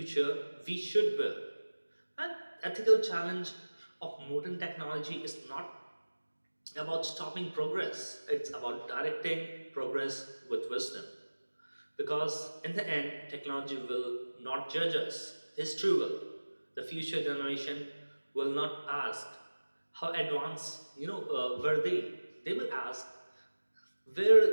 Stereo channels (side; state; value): both; inverted; correlation -1.00